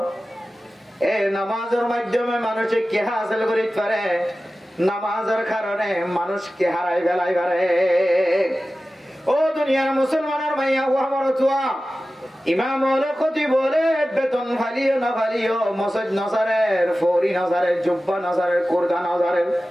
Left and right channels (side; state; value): both; normal; correlation 0.95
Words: এ নামাজের মাধ্যমে মানুষে কে হাসিল করিতে পারে, নামাজের কারণে মানুষ কে হারাই ফেলাই পারে। ও দুনিয়ার মুসলমানের মাইয়া ও আমার চুয়া ইমাম হলো ক্ষতি বলে বেতন ফালিও না ফালিও, মসজিদ নসারের ফৌরি নসারের জুব্বা নসারের কোরদা নসারের